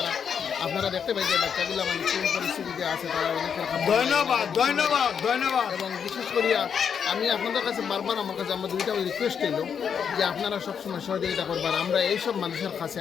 আপনারা দেখতে পাই যে বাচ্চাগুলো মানে কোন পরিস্থিতিতে আছে তারা অনেকের ধন্যবাদ। এবং বিশেষ করিয়া আমি আপনাদের কাছে বারবার আমার কাছে আমার দুইটা রিকোয়েস্ট এলো যে আপনারা সবসময় সহযোগিতা করবার। আমরা এইসব মানুষের কাছে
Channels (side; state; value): right; quieter; 7.3 dB